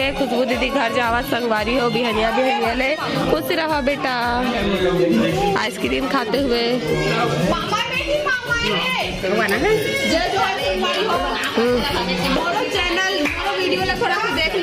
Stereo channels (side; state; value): both; identical; correlation 1.00